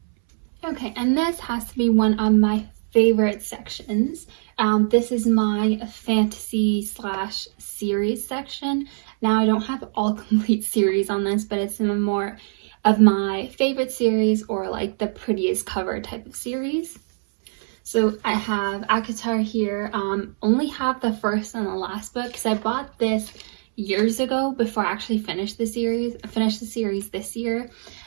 Okay, and this has to be one of my favorite sections. This is my fantasy / series section. Now I don't have all complete series on this, but it's some more of my favorite series, or like the prettiest cover type of series. So I have ACOTAR here. Only have the first and the last book, because I bought this years ago before I actually finished the series. I finished the series this year,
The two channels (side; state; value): left; silent; 63 dB below the other